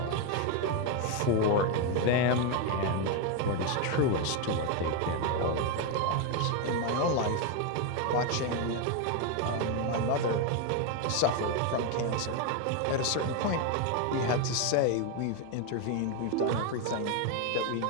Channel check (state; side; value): different; both; correlation 0.02